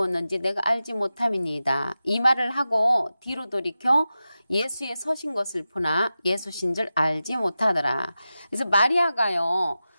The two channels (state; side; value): inverted; both; correlation -0.93